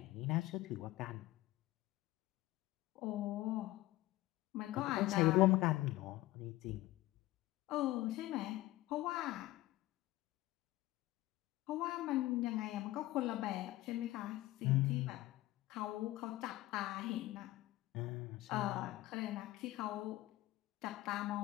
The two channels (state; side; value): quieter; right; 17.3 dB